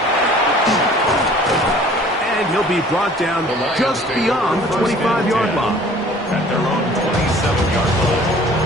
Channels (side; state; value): both; normal; correlation 0.51